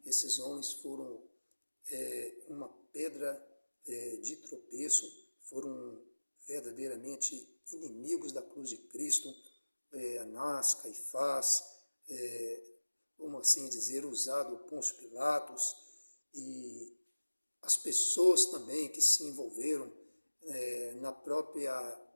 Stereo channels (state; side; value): inverted; both; correlation -1.00